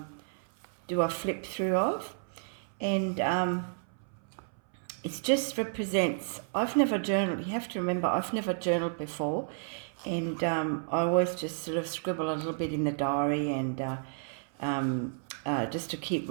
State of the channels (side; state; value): left; silent; 57 dB below the other